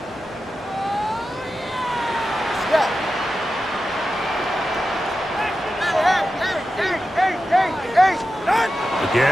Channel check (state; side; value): normal; both; correlation 0.92